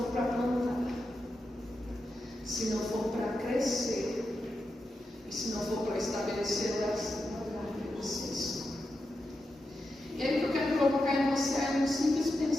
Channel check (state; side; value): normal; both; correlation 0.88